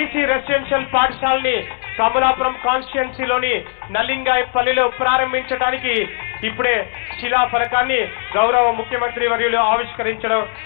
రెసిడెన్షియల్ పాఠశాలని కమలాపురం కాన్స్టిట్యున్సీలోని నల్లింగాయపల్లిలో ప్రారంభించడానికి ఇప్పుడే శిలా ఫలకాన్ని గౌరవ ముఖ్యమంత్రి వర్యులు ఆవిష్కరించడం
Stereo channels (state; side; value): silent; right; 61 dB below the other